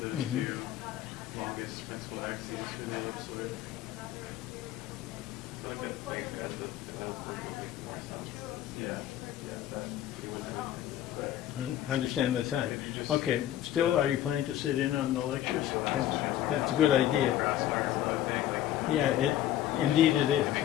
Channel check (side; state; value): right; quieter; 12.3 dB